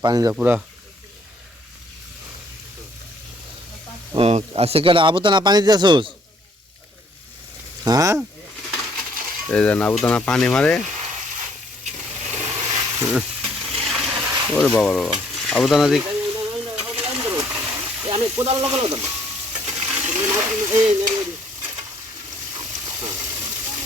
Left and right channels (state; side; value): normal; both; correlation 0.64